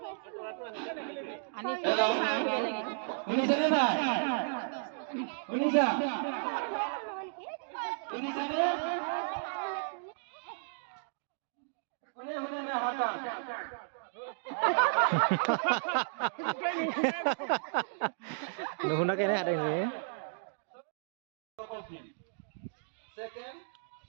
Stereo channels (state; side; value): silent; left; digital silence